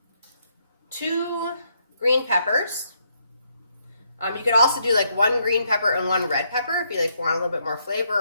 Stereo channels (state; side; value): inverted; both; correlation -0.75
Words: 2 green peppers. You could also do like 1 green pepper and 1 red pepper if you like want a little bit more flavor